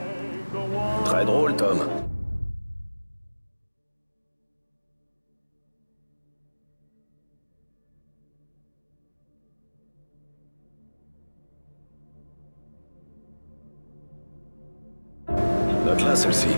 Très drôle, Tom. Note-la, celle-ci.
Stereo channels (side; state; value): both; inverted; correlation -1.00